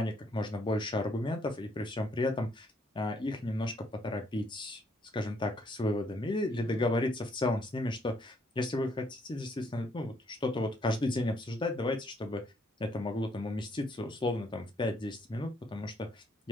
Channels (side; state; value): both; normal; correlation 0.70